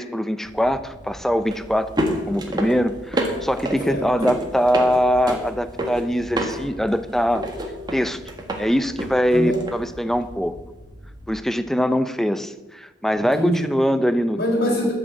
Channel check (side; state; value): both; normal; correlation 0.85